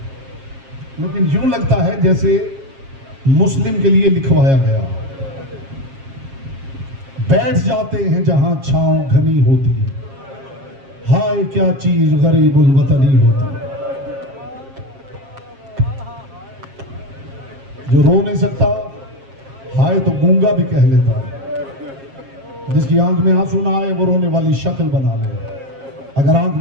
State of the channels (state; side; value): late; left; 7.4 ms